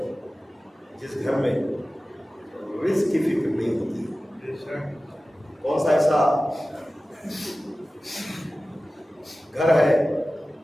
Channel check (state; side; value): normal; both; correlation 0.96